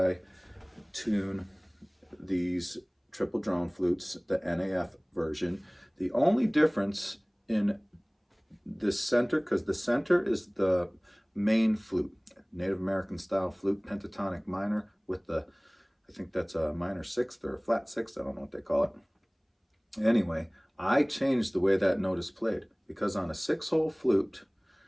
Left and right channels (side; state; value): both; identical; correlation 1.00